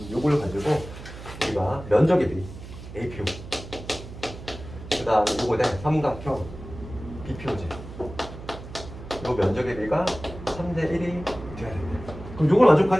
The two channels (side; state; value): right; noise; hum, 13 dB below the sound